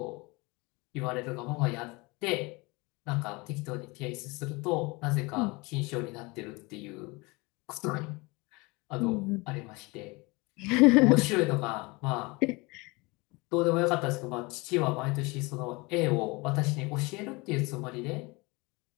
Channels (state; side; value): quieter; right; 25.5 dB